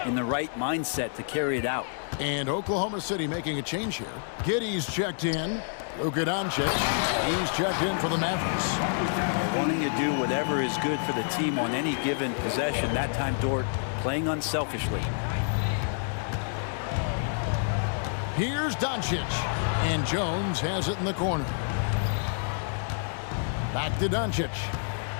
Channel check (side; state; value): right; silent; digital silence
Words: in the right mindset to carry it out. And Oklahoma City making a change here. Giddey's checked in. Luka Doncic, he's checked in for the Mavericks. Wanting to do whatever is good for the team on any given possession. That time, Dort playing unselfishly. Here's Doncic, and Jones has it in the corner. Back to Doncic.